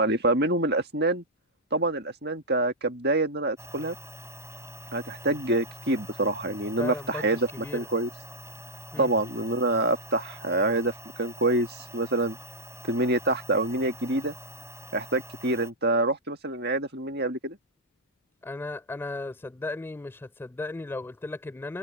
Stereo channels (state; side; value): normal; both; correlation -0.06